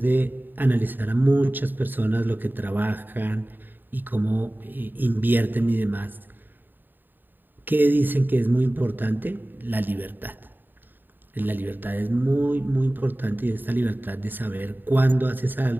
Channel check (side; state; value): left; late; 0.092 ms